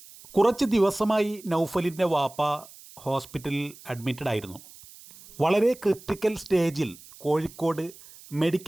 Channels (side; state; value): right; noise; hiss, 20 dB below the sound